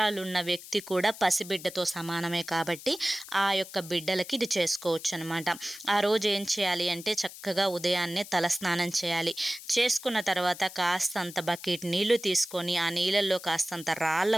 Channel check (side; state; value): left; noise; hiss, 15 dB below the sound